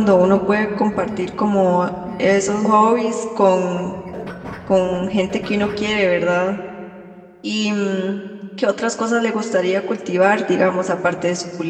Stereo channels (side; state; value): both; identical; correlation 1.00